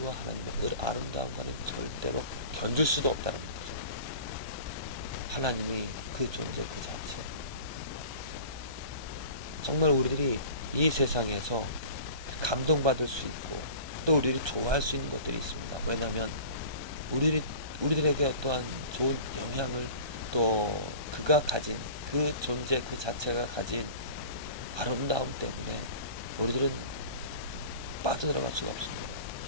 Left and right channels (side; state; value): left; late; 1.2 ms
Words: 하나님의 아름다움과는 절대로 견줄 수도 없다는 거죠. 하나님이 그 존재 그 자체. 정말 우리들이 이 세상에서 감동받을 수 있고 또 우리들이 좋아할 수 있는 것들이 있습니다. 왜냐하면 우리들에게 어떠한 좋은 영향을 또 그가 가진 그 존재 그 자체가 가진 아름다움 때문에 우리들은 빠져들어갈 수가 없습니다.